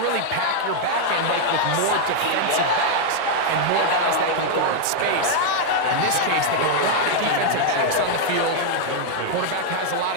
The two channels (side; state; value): both; different; correlation 0.00